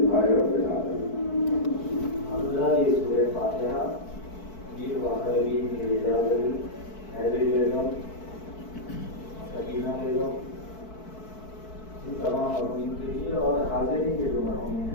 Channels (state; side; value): late; right; 4.6 ms